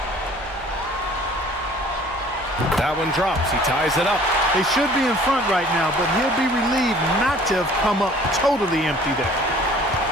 That one drops. He ties it up. They should be in front right now, but he'll be relieved not to have come up totally empty there.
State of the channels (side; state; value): both; normal; correlation 0.52